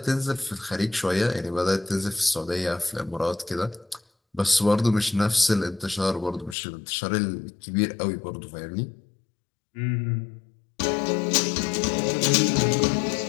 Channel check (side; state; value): right; drops out; at 6.6 s